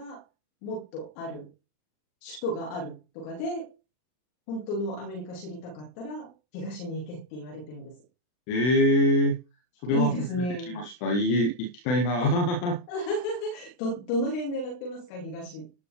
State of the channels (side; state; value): right; late; 39 ms